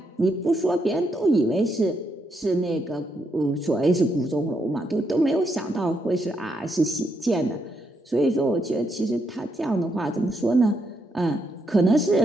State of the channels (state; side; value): normal; both; correlation 0.78